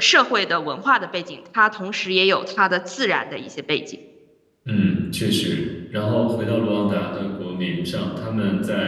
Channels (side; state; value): both; identical; correlation 1.00